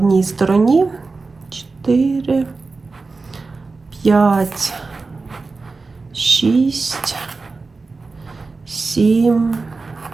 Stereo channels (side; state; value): left; quieter; 3.9 dB